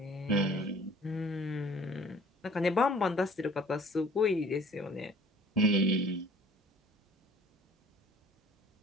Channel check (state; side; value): normal; both; correlation 0.53